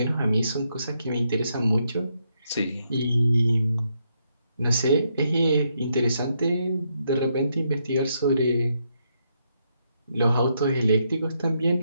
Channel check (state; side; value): inverted; both; correlation -0.78